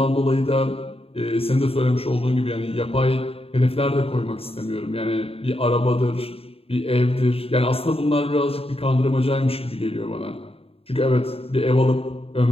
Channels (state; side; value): late; right; 0.28 ms